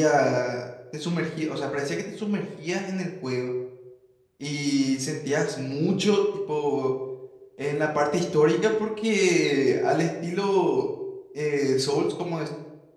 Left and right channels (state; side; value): identical; both; correlation 1.00